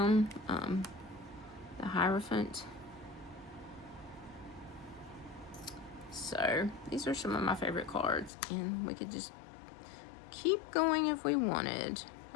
The Hierophant. So these are some of my favorite cards, and we could just keep going if we wanted.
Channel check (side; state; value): right; drops out; at 8.3 s